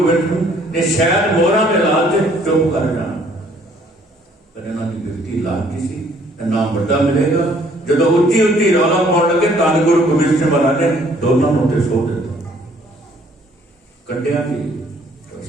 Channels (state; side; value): normal; both; correlation 0.61